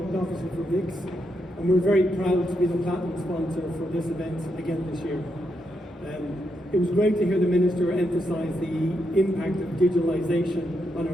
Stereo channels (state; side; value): normal; both; correlation 0.81